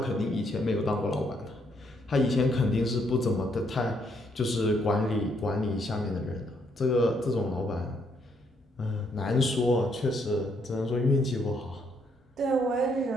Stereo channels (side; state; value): both; normal; correlation 0.73